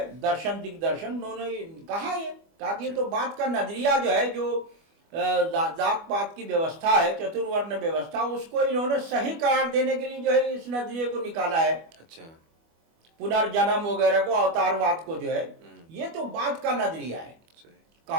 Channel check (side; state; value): left; late; 25 ms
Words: दर्शन दिग्दर्शन, उन्होंने कहा कि ये तो बात का नजरिया जो है, जो जात पात की व्यवस्था है, चतुर्वर्ण व्यवस्था, उसको इन्होंने सही करार देने के लिए जो है इस नजरिए को निकाला है। अच्छा। पुनर्जन्म वगैरह को, अवतारवाद को जो है, ये तो बात का नजरिया है।